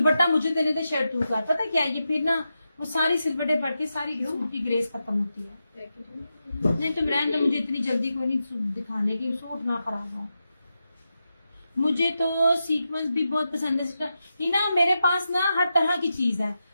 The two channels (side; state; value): both; inverted; correlation -0.89